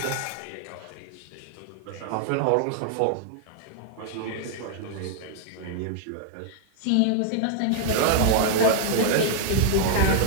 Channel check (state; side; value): different; both; correlation 0.00